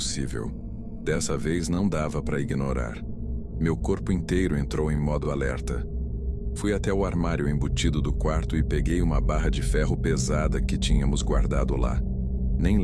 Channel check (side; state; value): both; identical; correlation 1.00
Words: Dessa vez não dava para ignorar. Meu corpo inteiro entrou em modo alerta. Fui até o armário embutido do quarto e peguei uma barra de ferro pesada que tínhamos guardado lá. Nem